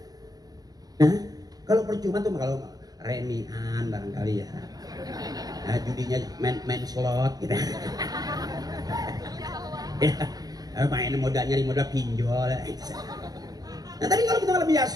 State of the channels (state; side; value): late; left; 0.19 ms